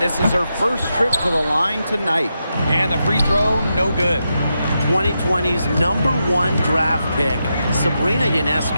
this is her first trip to the line tonight. And the free throw, no good. 2020's #1 draft pick, Sabrina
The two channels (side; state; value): both; inverted; correlation -0.86